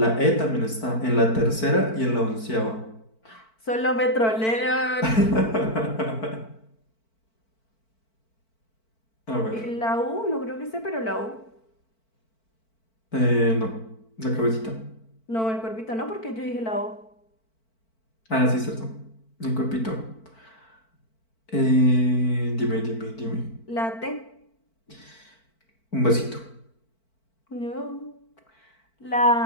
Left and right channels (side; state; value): right; late; 4.5 ms